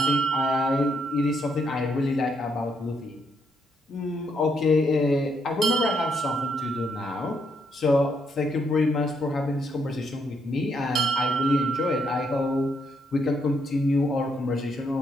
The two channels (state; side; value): normal; both; correlation 0.75